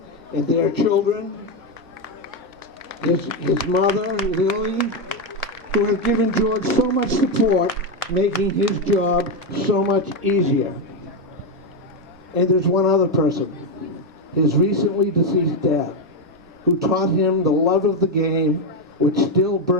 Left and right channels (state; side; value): normal; both; correlation 0.07